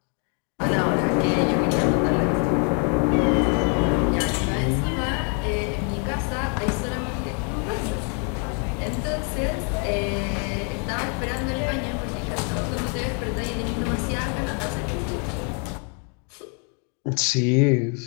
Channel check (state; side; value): quieter; right; 39.0 dB